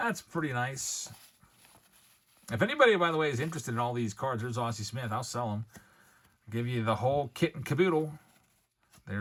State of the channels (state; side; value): identical; both; correlation 1.00